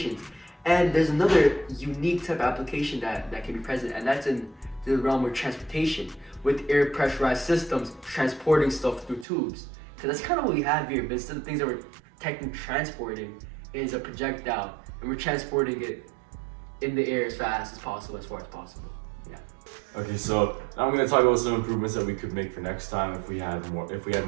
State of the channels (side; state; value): left; drops out; at 9.2 s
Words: And there's another unique type of application that can be present, and that's in the realm of transportation, with air pressurized systems transporting stuff through tubes. Because that's kind of what we have here, but instead of things that we're technically transporting is a projectile, and we're transporting it in the air as fast as possible, as far as possible. Okay, so now I'm going to talk about some improvements that we could make for next time if we had